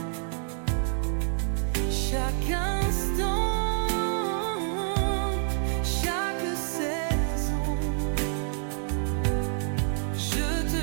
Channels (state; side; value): silent; left; 60 dB below the other